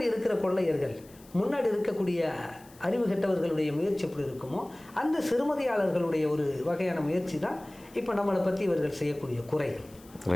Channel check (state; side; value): noise; left; hiss, 25 dB below the sound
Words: இருக்கிற கொள்ளையர்கள், முன்னாடி இருக்கக்கூடிய அறிவு கெட்டவர்களுடைய முயற்சி எப்படி இருக்குமோ அந்த சிறுமதியாளர்களுடைய ஒரு வகையான முயற்சி தான் இப்போ நம்மளை பற்றி இவர்கள் செய்யக்கூடிய குறைகள்.